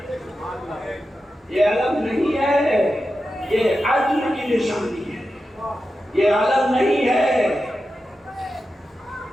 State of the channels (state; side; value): normal; both; correlation 0.91